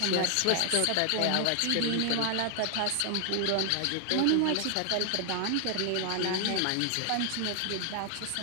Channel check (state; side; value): different; both; correlation 0.00